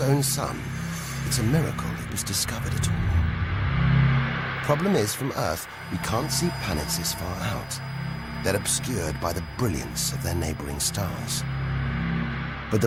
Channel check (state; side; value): identical; both; correlation 1.00